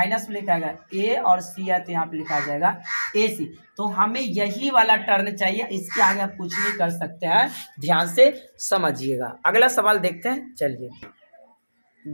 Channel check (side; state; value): both; inverted; correlation -1.00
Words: में लिखाएगा ए और सी है तो यहाँ पे लिखा जाएगा ए सी। तो हमें यही वाला टर्न चाहिए, इसके आगे आप कुछ नहीं कर सकते हैं, ध्यान से समझिएगा। अगला सवाल देखते हैं, चलिए